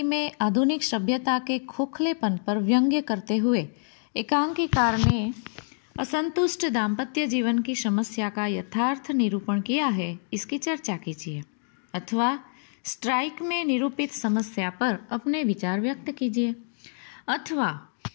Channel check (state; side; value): silent; right; 60 dB below the other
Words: में आधुनिक सभ्यता के खोखलेपन पर व्यंग्य करते हुए एकांकीकार ने असंतुष्ट दाम्पत्य जीवन की समस्या का यथार्थ निरूपण किया है, इसकी चर्चा कीजिए अथवा स्ट्राइक में निरूपित समस्या पर अपने विचार व्यक्त कीजिए अथवा